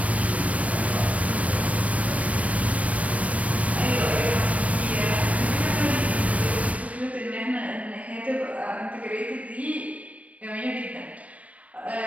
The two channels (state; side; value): late; left; 0.066 ms